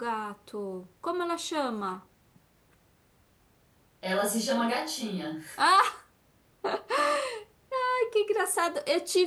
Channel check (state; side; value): identical; both; correlation 1.00